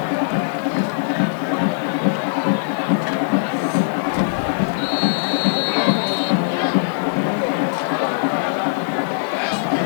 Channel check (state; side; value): silent; right; digital silence